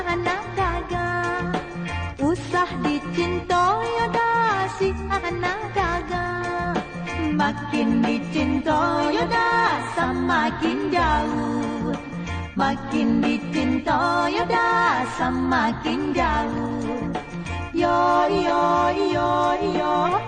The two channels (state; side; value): identical; both; correlation 1.00